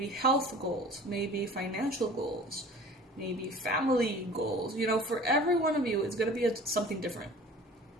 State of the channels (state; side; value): normal; both; correlation 0.44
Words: health goals, maybe financial goals, maybe family goals. For every one of you, it's going to be something different.